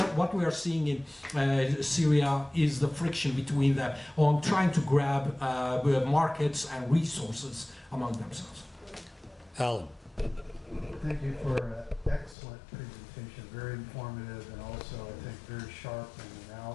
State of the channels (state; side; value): drops out; right; at 12.4 s